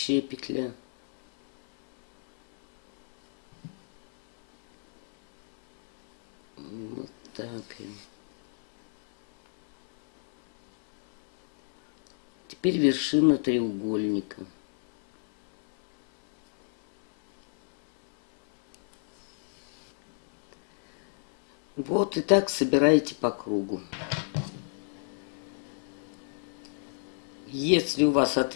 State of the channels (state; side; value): silent; right; 59 dB below the other